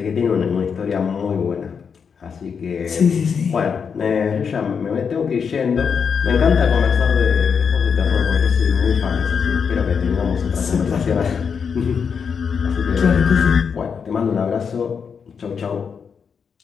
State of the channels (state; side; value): quieter; right; 6.4 dB